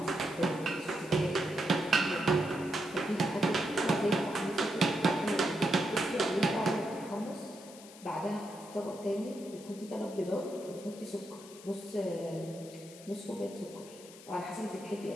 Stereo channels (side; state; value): left; noise; hiss, 18 dB below the sound